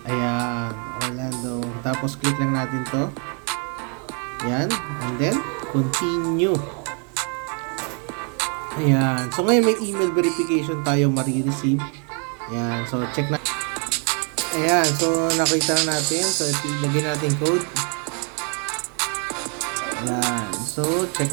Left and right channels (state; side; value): quieter; left; 38.7 dB